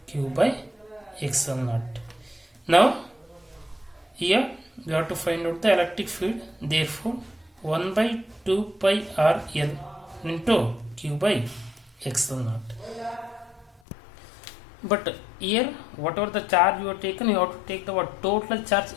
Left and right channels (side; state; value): right; drops out; at 13.8 s